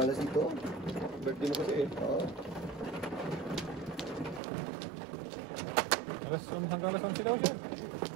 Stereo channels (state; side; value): drops out; left; at 4.4 s